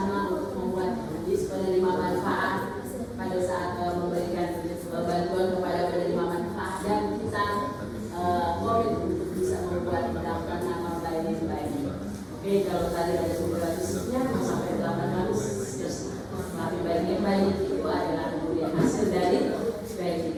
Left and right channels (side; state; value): both; identical; correlation 1.00